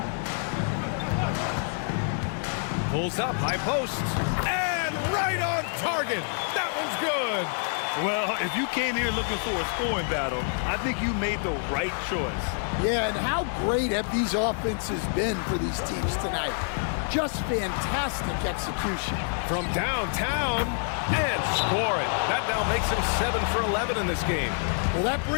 Pulls up, high post, and right on target. That one's good. Well, if you came here looking for a scoring battle, I think you made the right choice. Yeah, and how great have these offenses been for these teams tonight? Just fantastic execution. From downtown, and score it. That now makes him 7 for 11 in this game. Well, that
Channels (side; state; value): right; silent; 60 dB below the other